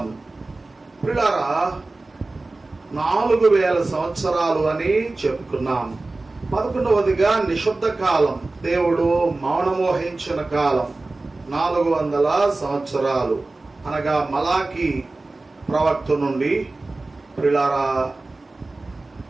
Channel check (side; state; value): left; quieter; 3.2 dB